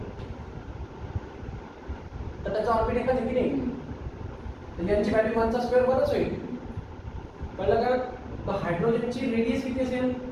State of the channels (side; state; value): both; identical; correlation 1.00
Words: तर त्याचा ऑर्बिट एकच आहे की नाही, तर यांची व्हॅल्यू 1 चा स्क्वेअर 1च होईल. कळलं का. तर हायड्रोजनची रेडियस किती असेल,